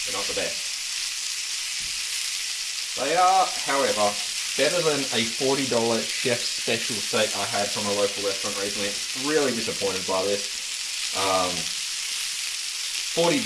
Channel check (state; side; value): identical; both; correlation 1.00